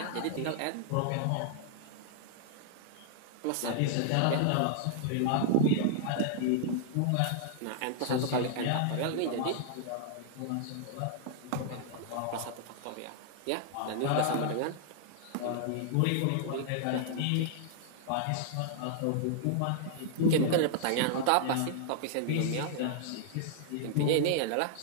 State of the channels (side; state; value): both; different; correlation -0.01